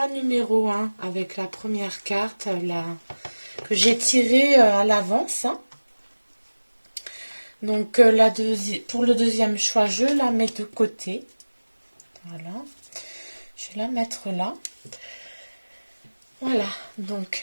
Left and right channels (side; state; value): both; inverted; correlation -1.00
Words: numéro 1 avec la première carte que j'ai tirée à l'avance. Hein. Donc pour le deuxième choix, je la mets de côté. Voilà. Je vais la mettre là. Voilà.